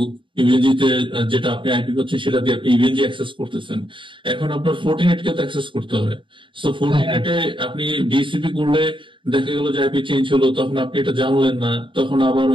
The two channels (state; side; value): late; left; 0.24 ms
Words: ইভেনজিতে যেটা আপনি আইপি করছেন সেটা দিয়ে আপনি ইভেনজি অ্যাক্সেস করতেছেন। এখন আপনার ফর্টিনেট কে তো অ্যাক্সেস করতে হবে। সো ফর্টিনেটে আপনি ডিএসসিপি করলে দেখা গেল যে আইপি চেঞ্জ হলো, তখন আপনি এটা জানলেন না, তখন আবার